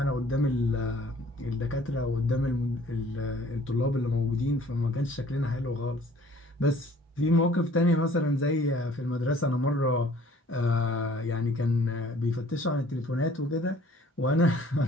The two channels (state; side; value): normal; both; correlation 0.55